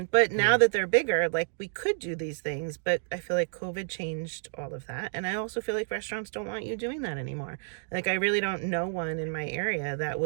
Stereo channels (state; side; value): silent; left; digital silence